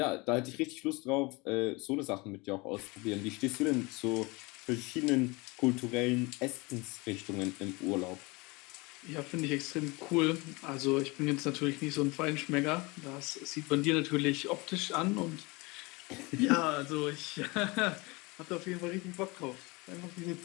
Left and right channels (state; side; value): quieter; right; 25.5 dB